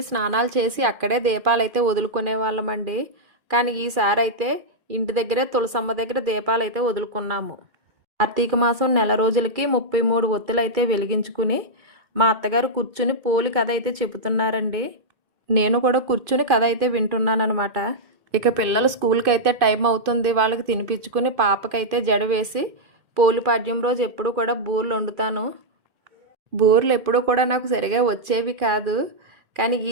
స్నానాలు చేసి అక్కడే దీపాలైతే వదులుకునే వాళ్ళమండి. కానీ ఈసారి అయితే ఇంటి దగ్గరే తులసమ్మ దగ్గర దీపాలైతే వదులుకున్నాము. కార్తీక మాసం నెల రోజులకి 33 ఒత్తులైతే వెలిగించుకుని మా అత్తగారు కూర్చుని పోలి కథ అయితే చెబుతున్నారండి. నేను కూడా కూర్చుని కథ అయితే వింటున్నానమాట. ఇక పిల్లలు స్కూల్కి అయితే టైం అవుతుంది, వాళ్ళకి తినిపించుకుని పాపకైతే జడ వేసి పోలిపాడ్యం రోజు ఎప్పుడు కూడా బూరెలు వండుతాను. బూరెలు ఎప్పుడూ కూడా నాకు సరిగా వచ్చేవి కాదు, కానీ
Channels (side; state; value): left; late; 2.5 ms